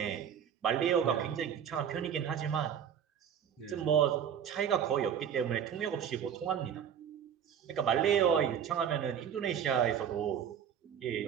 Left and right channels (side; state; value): left; quieter; 8.6 dB